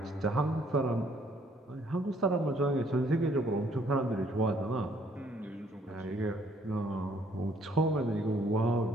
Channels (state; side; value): normal; both; correlation 0.64